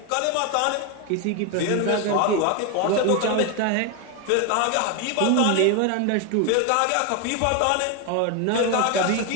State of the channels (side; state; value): both; different; correlation 0.02